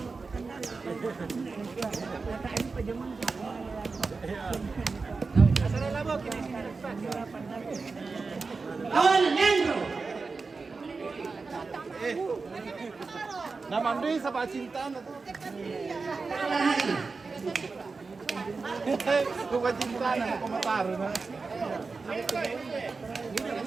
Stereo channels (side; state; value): left; quieter; 4.3 dB